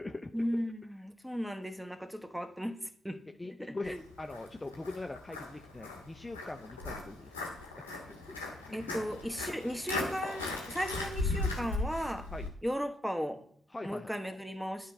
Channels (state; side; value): normal; both; correlation 0.79